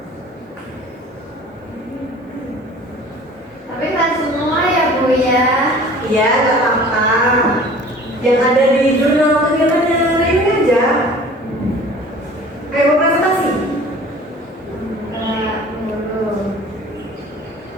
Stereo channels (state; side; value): normal; both; correlation 0.46